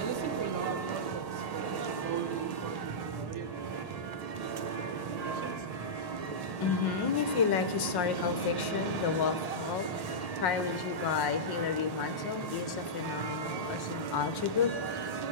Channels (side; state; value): right; late; 1.1 ms